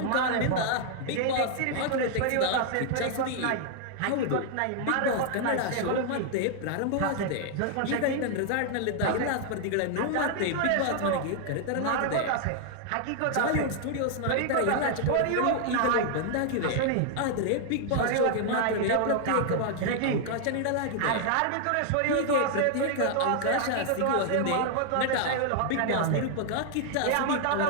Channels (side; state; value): both; different; correlation 0.00